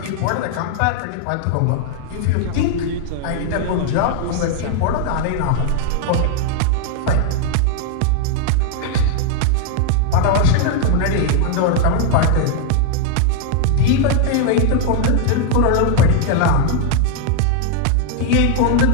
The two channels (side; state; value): both; different; correlation 0.00